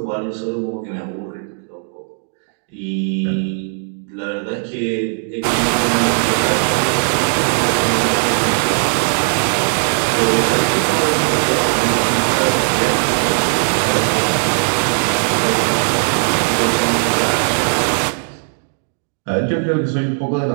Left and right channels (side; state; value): left; silent; digital silence